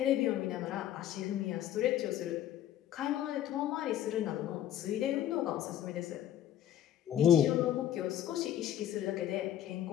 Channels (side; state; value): right; quieter; 11.4 dB